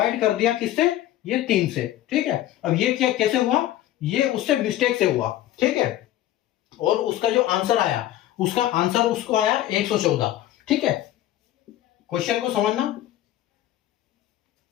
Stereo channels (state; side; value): quieter; right; 13.6 dB